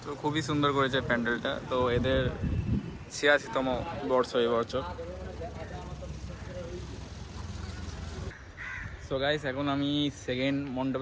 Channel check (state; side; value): identical; both; correlation 1.00